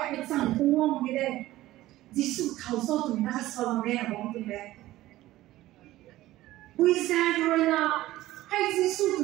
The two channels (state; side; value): quieter; left; 16.1 dB